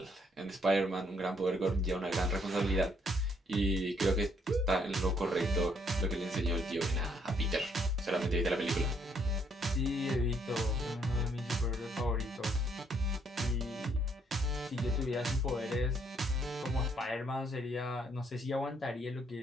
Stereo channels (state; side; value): normal; both; correlation 0.69